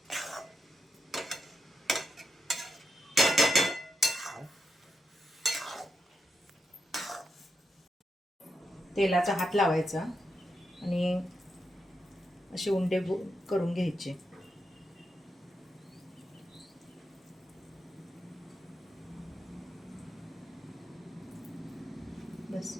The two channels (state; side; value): normal; both; correlation 0.85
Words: तेलाचा हात लावायचा आणि असे उंडे करून घ्यायचे. बस.